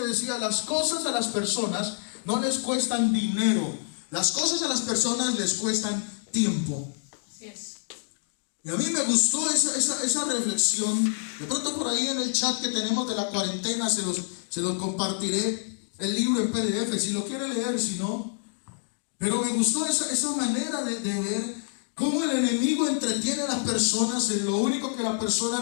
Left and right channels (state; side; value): silent; right; digital silence